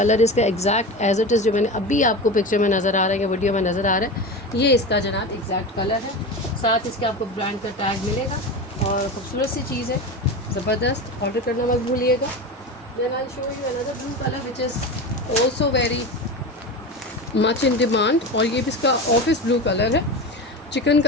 इसका एग्जैक्ट एज इट इज़ जो मैंने अभी आपको पिक्चर में नज़र आ रहा है या वीडियो में नज़र आ रहा है, ये इसका जनाब एग्जैक्ट कलर है। साथ इसके आपको ब्रांड का टैग मिलेगा और खूबसूरत सी चीज़ है, ज़बरदस्त। ऑर्डर करना मत भूलिएगा। Then I show you another blue colour which is also very much in demand, और ये भी इसका ऑफिस ब्लू कलर है,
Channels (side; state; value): both; normal; correlation 0.26